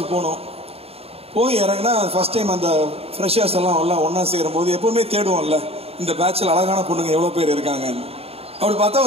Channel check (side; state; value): left; late; 0.29 ms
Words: போனோம். போய் இறங்கினா ஃபஸ்ட் டைம் அந்த ஃப்ரெஷர்ஸ் எல்லாம் ஒன்றா சேரும்போது எப்போவுமே தேடுவோம்ல, இந்த பேட்சில் அழகான பொண்ணுங்க எவ்வளோ பேர் இருக்காங்கன்னு. அப்படி பார்த்தா